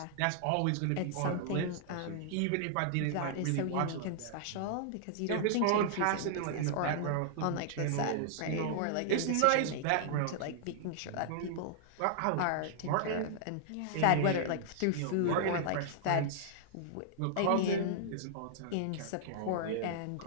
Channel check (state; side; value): different; both; correlation -0.01